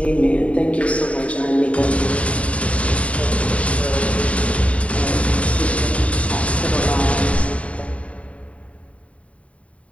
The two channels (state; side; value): late; right; 0.065 ms